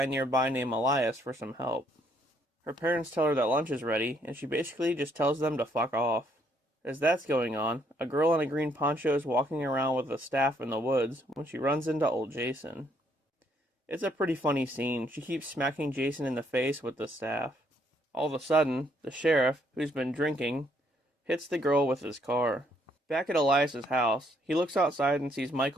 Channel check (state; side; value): normal; both; correlation 0.69